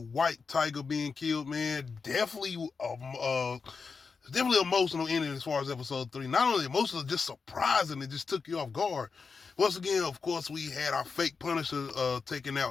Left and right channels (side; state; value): right; quieter; 5.0 dB